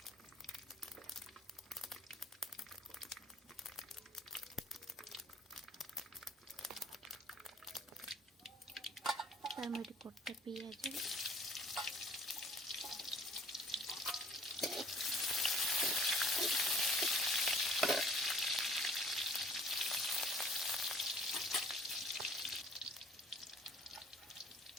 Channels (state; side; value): normal; both; correlation 0.56